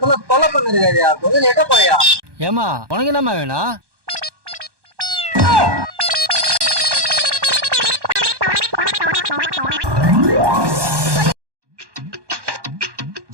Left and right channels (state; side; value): late; left; 1.2 ms